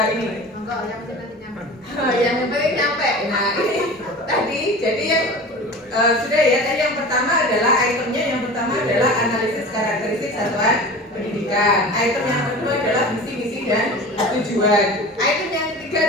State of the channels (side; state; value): both; normal; correlation 0.36